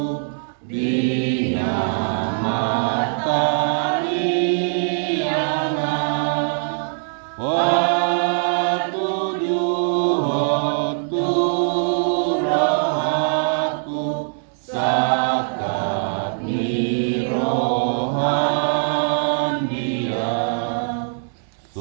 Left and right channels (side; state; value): left; silent; digital silence